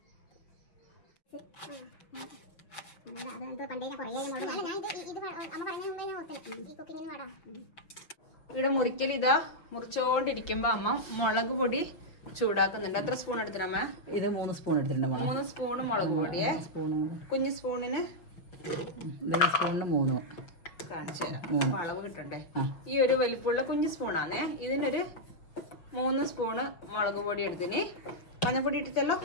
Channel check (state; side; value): late; right; 5.9 ms